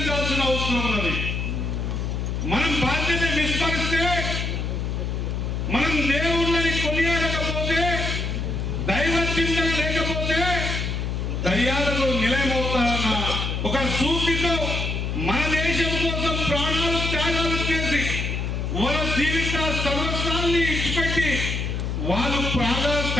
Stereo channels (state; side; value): noise; left; hum, 2 dB below the sound